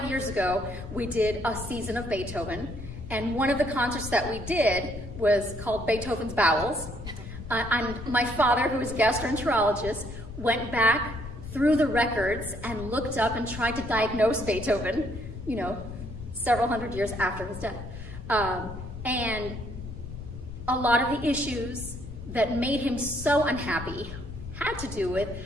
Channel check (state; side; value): noise; left; rumble, 11 dB below the sound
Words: years ago, we did a season of Beethoven, and one of the concerts that we did was called Beethoven's Bowels. And my father, who is a gastroenterologist, went back through the records and looked up and tried to diagnose Beethoven, several hundred years after his death. And a lot of the issues that made him so unhappy had to do with